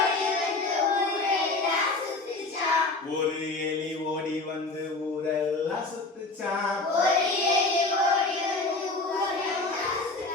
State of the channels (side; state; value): right; quieter; 3.4 dB